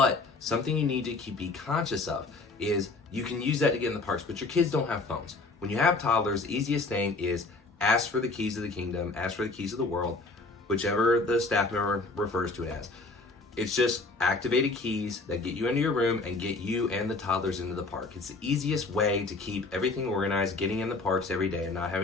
something you need to be conscious of is you can use that to get in the parks, but your kids don't have phones. When you have toddlers, the easiest thing is ask for the keys of the kingdom, ask for the keys of the world, whichever the staff member refers to it as. It's just activated keys that get you into your room and get you and the toddlers into the park. It's the easiest way to keep everything organized, getting in the parks every day and not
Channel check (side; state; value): right; quieter; 3.5 dB